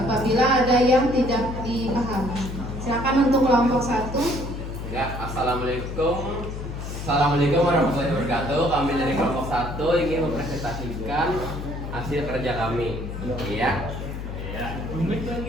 ada yang tidak dipahami. Silakan untuk kelompok 1. Ya, Assalamualaikum. Assalamualaikum warahmatullahi wabarakatuh. Kami dari kelompok 1 ingin mempresentasikan hasil kerja kami. Iya.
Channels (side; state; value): left; noise; hum, 7 dB below the sound